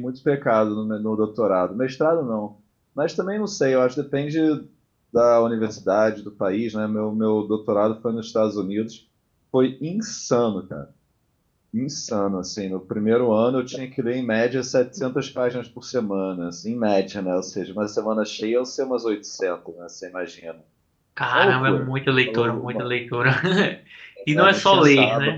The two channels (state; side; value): identical; both; correlation 1.00